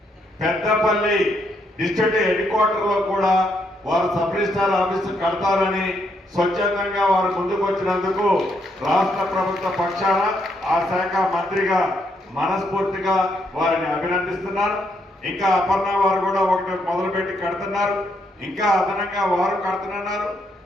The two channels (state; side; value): normal; both; correlation 0.75